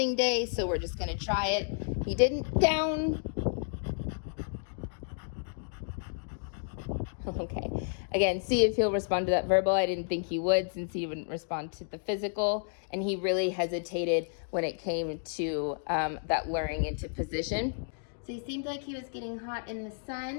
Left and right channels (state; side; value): silent; right; digital silence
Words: day, so we're just gonna try it. He didn't down. Okay, again, see if he'll respond to that verbal. I didn't think he would since he wouldn't respond to the physical. And he really hesitated when it came to that luring into position. So he seemed like he was getting hot in the